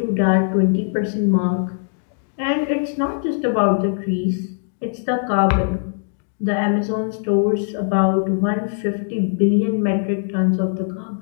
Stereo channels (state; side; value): silent; right; digital silence